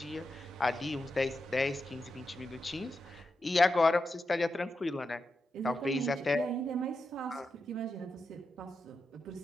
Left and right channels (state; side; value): normal; both; correlation 0.88